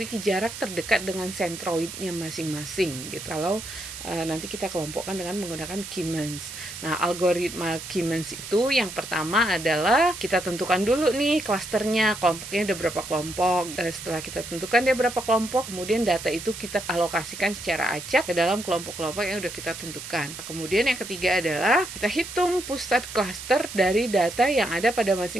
jarak terdekat dengan sentroidnya masing-masing gitu. Kalau nanti kita kelompokkan dengan menggunakan K-means. Nah, algoritma K-means itu yang pertama adalah kita tentukan dulu nih klasternya, kelompoknya ada berapa kelompok. Setelah kita tentukan dia berapa kelompok, kemudian data itu kita alokasikan secara acak ke dalam kelompok-kelompok yang udah kita tentukan. Kemudian yang ketiga adalah kita hitung pusat klaster dari data yang ada pada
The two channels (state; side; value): noise; right; hiss, 10 dB below the sound